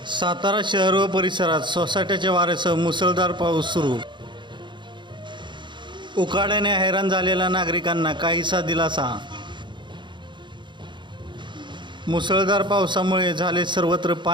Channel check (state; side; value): late; left; 0.23 ms